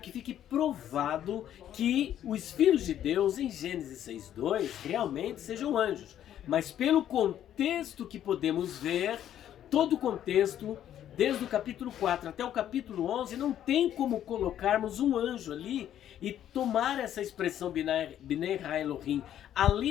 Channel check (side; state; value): right; quieter; 10.9 dB